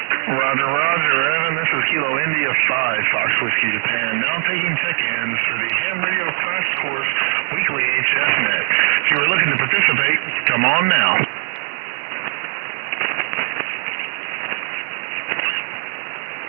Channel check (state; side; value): silent; left; 66 dB below the other